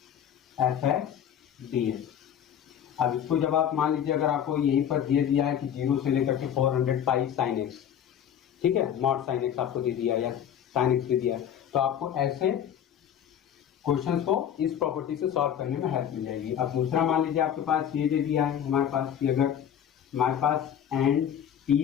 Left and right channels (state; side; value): quieter; right; 9.4 dB